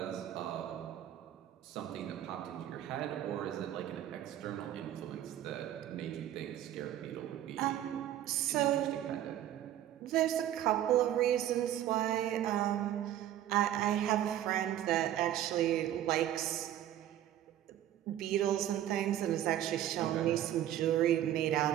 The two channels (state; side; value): quieter; left; 12.0 dB